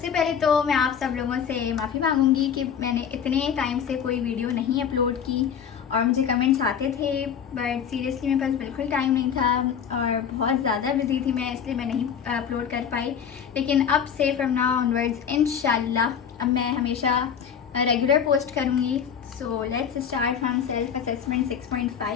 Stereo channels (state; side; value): quieter; right; 7.8 dB